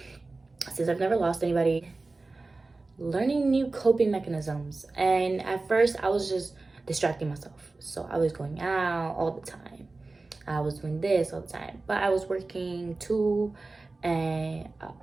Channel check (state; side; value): quieter; left; 3.4 dB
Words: since I've never lost anybody, learning new coping mechanisms. And at first I was just distracting myself. So I was going out all the time. I was doing this all the time. But I was working too. And